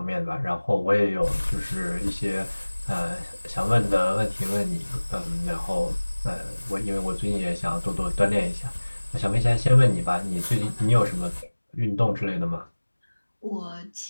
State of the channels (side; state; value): both; inverted; correlation -1.00